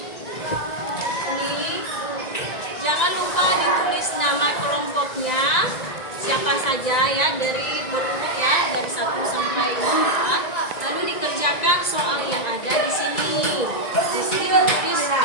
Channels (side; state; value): right; late; 1.9 ms